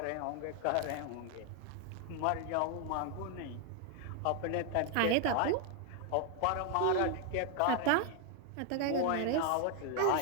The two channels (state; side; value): different; both; correlation 0.00